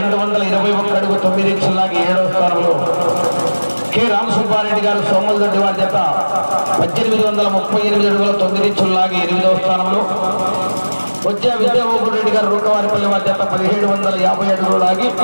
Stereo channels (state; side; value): inverted; both; correlation -1.00